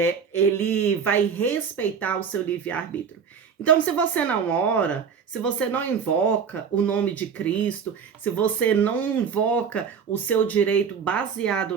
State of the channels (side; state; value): left; quieter; 6.6 dB